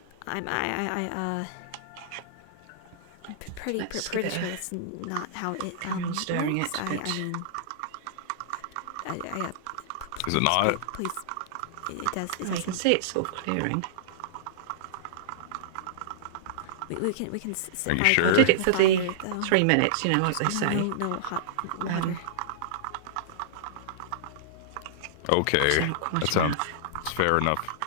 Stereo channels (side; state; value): both; different; correlation -0.02